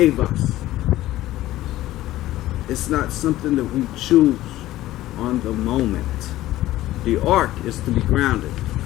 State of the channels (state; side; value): quieter; right; 15.4 dB